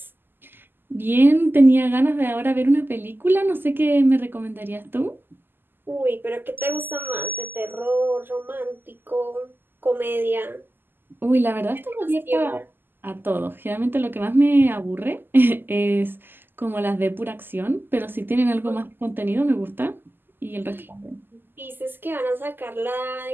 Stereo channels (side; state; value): left; late; 0.095 ms